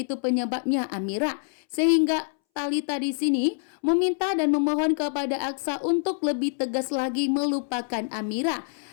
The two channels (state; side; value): silent; right; 61 dB below the other